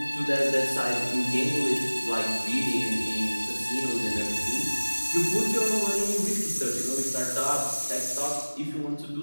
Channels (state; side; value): inverted; both; correlation -1.00